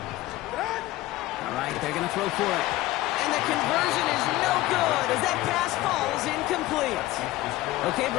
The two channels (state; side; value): quieter; right; 17.0 dB